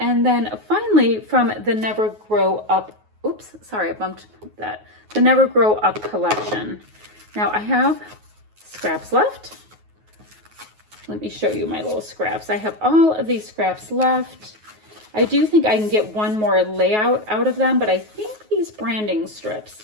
then finally from the Never Grow Up, oops, sorry, I bumped that. The Never Grow Up collection. Now I have scraps left. Let me show you my little scraps. I have all of these scraps left. I do think I can get one more layout out of them, but I think these branding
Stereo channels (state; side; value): late; left; 9.4 ms